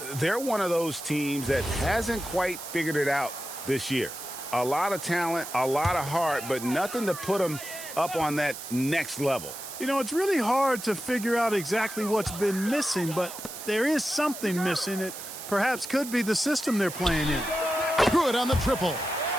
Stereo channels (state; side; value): noise; right; hiss, 10 dB below the sound